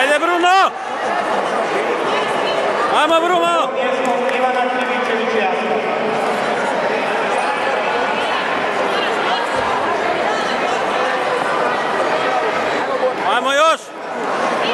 Bruno! Ajmo Bruno! Ajmo još!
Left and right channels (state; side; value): identical; both; correlation 1.00